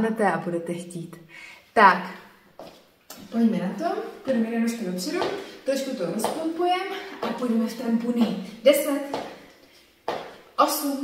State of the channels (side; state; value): both; identical; correlation 1.00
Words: a budete chtít. Tak, pojďme na to, půjdeme na nožky dopředu, trošku to rozpompujeme a půjdeme v trampuny. 10,